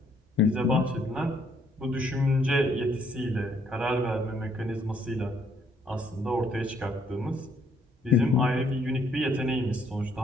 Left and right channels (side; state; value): both; normal; correlation 0.68